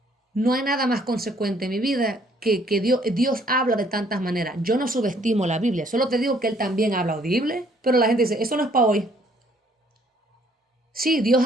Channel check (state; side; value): normal; both; correlation 0.63